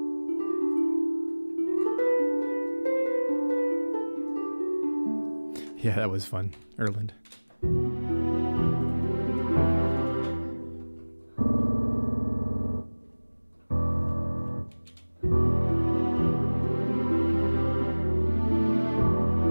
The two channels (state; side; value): inverted; both; correlation -1.00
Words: Yeah, that was fun. Erland.